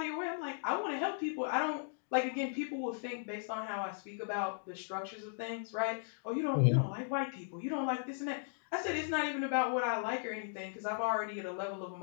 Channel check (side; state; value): right; silent; digital silence